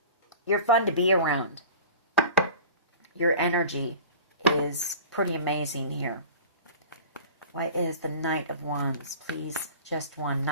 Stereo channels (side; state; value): both; inverted; correlation -0.39